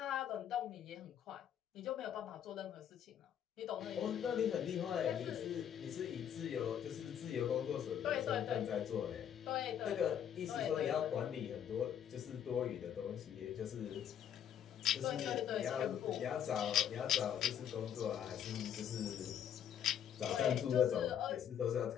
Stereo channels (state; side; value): quieter; right; 9.3 dB